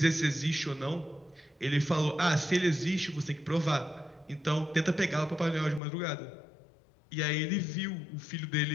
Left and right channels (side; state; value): right; drops out; at 5.8 s